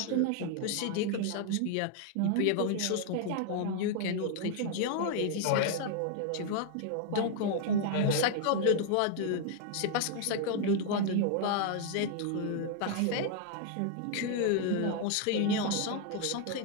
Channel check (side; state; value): both; different; correlation 0.00